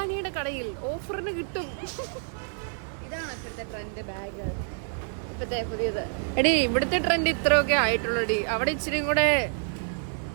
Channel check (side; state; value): left; silent; 59 dB below the other